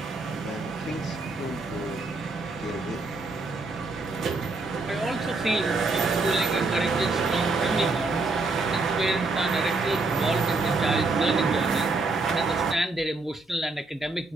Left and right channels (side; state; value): left; quieter; 3.5 dB